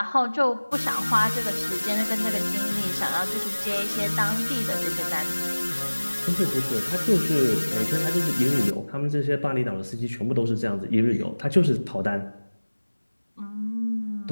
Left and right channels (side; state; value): both; inverted; correlation -1.00